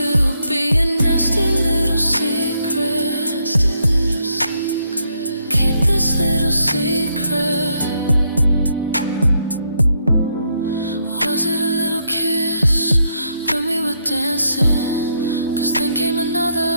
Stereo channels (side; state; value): both; inverted; correlation -0.76